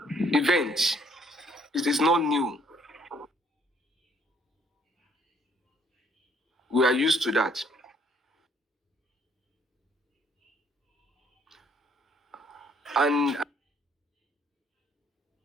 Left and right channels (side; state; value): both; normal; correlation 0.65